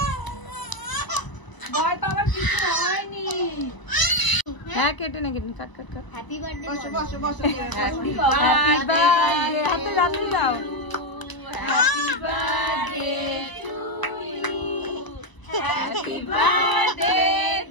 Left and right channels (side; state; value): right; late; 1.0 ms